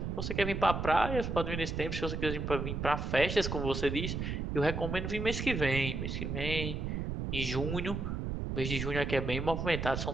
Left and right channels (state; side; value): noise; right; rumble, 3 dB below the sound